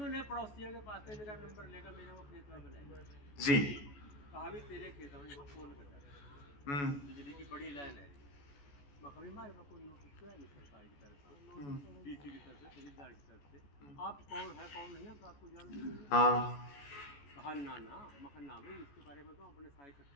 पड़ोसियों के पास से मेरा नंबर लेकर मेरे को खेत में बुलाया जी, कहा भी तेरे खेत में फोन कर, बिजली की बड़ी लाइन है, मखमी मारे में कोई नोटिस तो है नहीं सरकारी की तरफ से, डीसी की तरफ से, तहसीलदार की तरफ से, आप कौन है कौन नहीं है तो आपको जान दीजिए। हाँ कहा ना मखन ना भाई इसके बारे में तो अपने सारे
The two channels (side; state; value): right; late; 14 ms